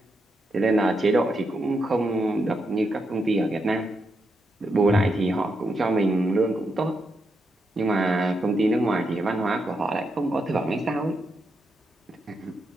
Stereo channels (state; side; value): normal; both; correlation 0.83